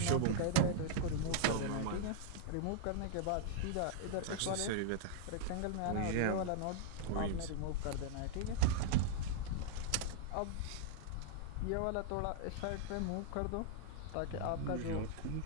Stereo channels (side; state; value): both; different; correlation -0.01